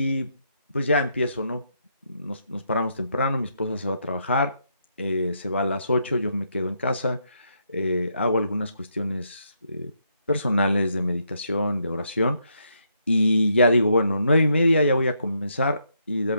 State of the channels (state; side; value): inverted; both; correlation -0.77